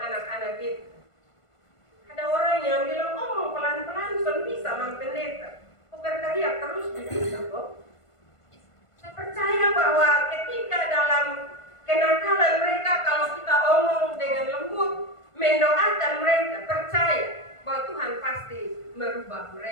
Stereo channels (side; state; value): right; late; 1.5 ms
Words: kita. Ada orang yang bilang, pelan-pelan sudah bisa pendeta, berteriak terus bisa kok. Saya percaya bahwa ketika dalam kenakalan mereka, kalau kita omong dengan lembut, mendoakan mereka, percaya bahwa Tuhan pasti merubah